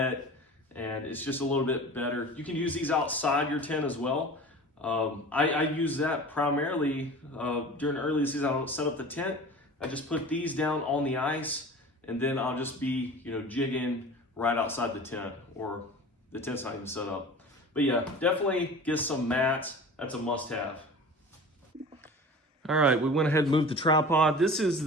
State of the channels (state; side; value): normal; both; correlation 0.38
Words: and it's just a little bit better. You can use these outside your tent as well. I use that primarily during early season. I don't set up the tent. I just put these down on the ice, and then I'll just be, jigging right outside the tent, or the tent's not even set up. But yeah, definitely get some mats. That's a must-have. All right, we went ahead and moved the tripod. This is